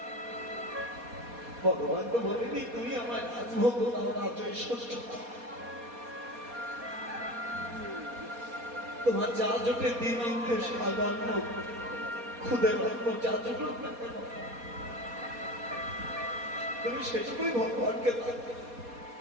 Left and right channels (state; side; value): late; left; 4.2 ms